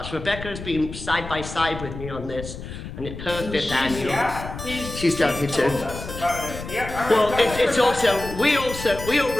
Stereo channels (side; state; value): left; noise; rumble, 10 dB below the sound